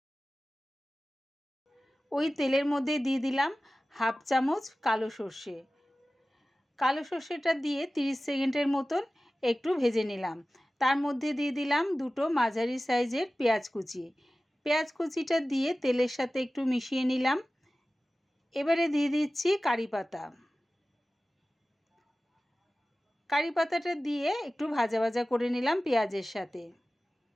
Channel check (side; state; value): both; normal; correlation 0.96